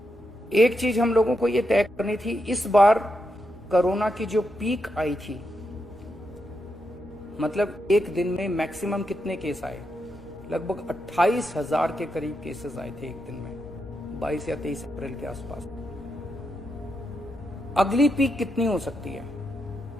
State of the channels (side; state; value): both; normal; correlation 0.84